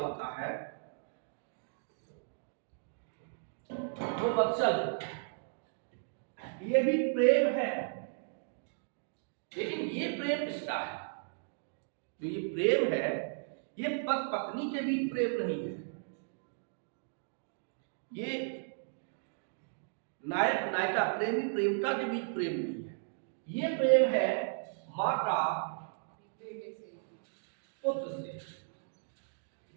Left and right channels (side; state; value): left; silent; digital silence